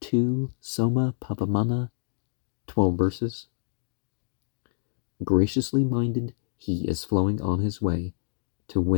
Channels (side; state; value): right; silent; digital silence